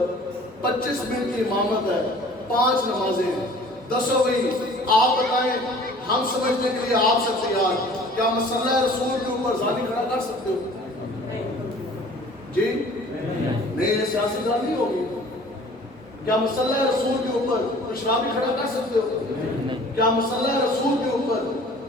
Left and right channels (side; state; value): both; normal; correlation 0.49